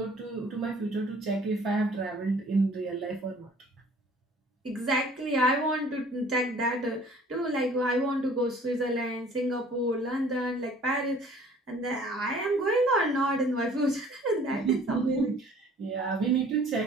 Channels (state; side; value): normal; both; correlation 0.53